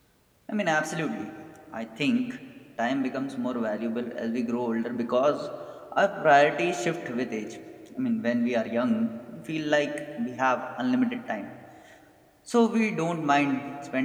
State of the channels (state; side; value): identical; both; correlation 1.00